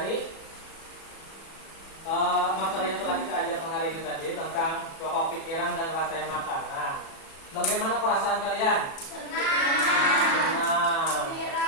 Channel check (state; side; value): late; right; 36 ms